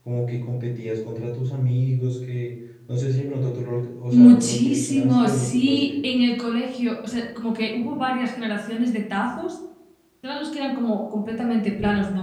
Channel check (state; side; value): identical; both; correlation 1.00